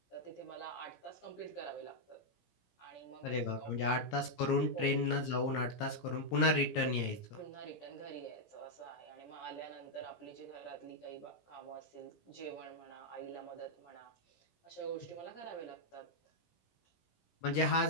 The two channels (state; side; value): late; right; 17 ms